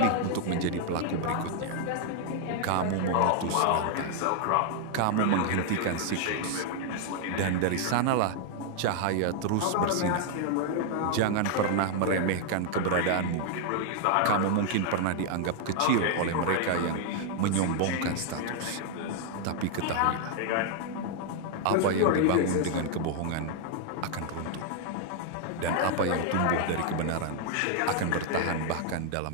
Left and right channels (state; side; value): different; both; correlation 0.00